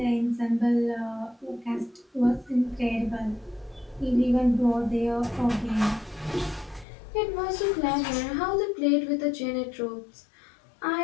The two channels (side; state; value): right; drops out; at 6.9 s